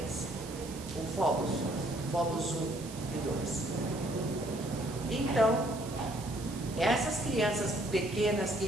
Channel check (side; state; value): right; noise; hiss, 15 dB below the sound